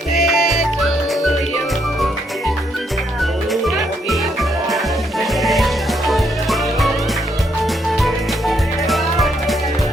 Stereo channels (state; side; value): normal; both; correlation 0.74